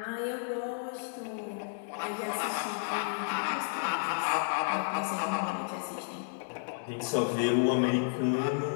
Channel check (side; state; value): right; silent; digital silence